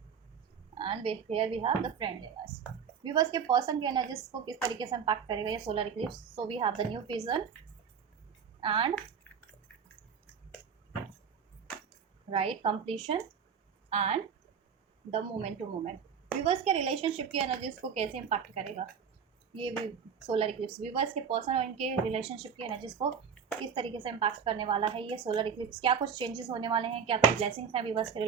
And here we have the friendliness. Viewers के पर्सन की एनर्जीज को किस तरीके से इम्पैक्ट करेगा ये solar eclipse. So we have the new vision and right completion and the moment to moment. Viewers के रिलेशनशिप की एनर्जीज को कैसे इम्पैक्ट करेगा ये भी सोलर इक्लिप्स। व्यूअर्स के पर्सन और इनके रिलेशनशिप की एनर्जीज को किस तरीके से इम्पैक्ट करने वाला है ये सोलर इक्लिप्स। क्या कुछ चेंजेस होने वाले हैं, क्या कुछ ब्लेसिंग्स हैं व्यूअर्स के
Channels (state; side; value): quieter; left; 6.9 dB